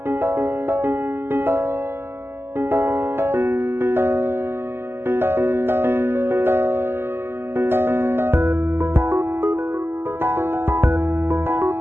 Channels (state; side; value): late; left; 0.11 ms